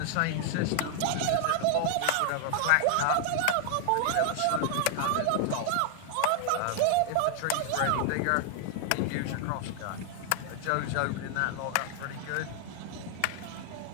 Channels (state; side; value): different; both; correlation 0.00